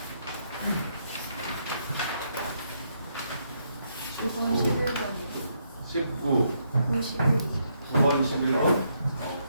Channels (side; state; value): both; inverted; correlation -0.76